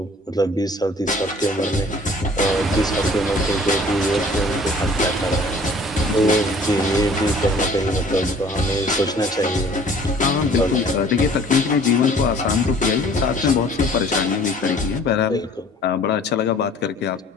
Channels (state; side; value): normal; both; correlation 0.52